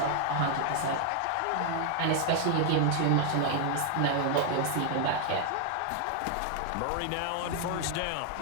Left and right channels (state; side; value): different; both; correlation 0.00